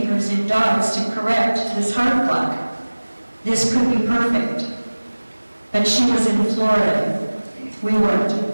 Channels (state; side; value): inverted; both; correlation -1.00